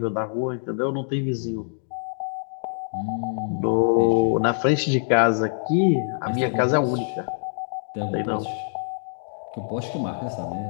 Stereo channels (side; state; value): right; silent; digital silence